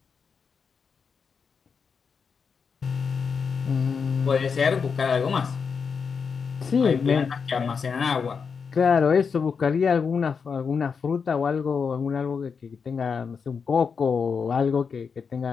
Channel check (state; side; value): quieter; right; 5.8 dB